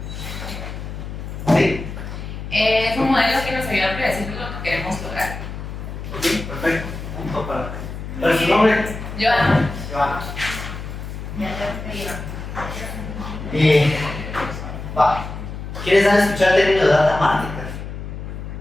¿Sí? Es un modelo que nos ayuda a predecir lo que queremos lograr. Ok, perfecto. Punto para su nombre. Joana. Joana. Ya te escribo. Va. ¿Quieres escuchar el término de data marketer?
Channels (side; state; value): left; noise; hum, 8 dB below the sound